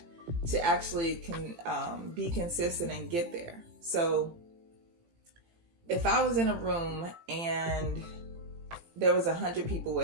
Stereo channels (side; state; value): left; late; 18 ms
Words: to actually be consistent and get there. So if I was in a room and there was 100 people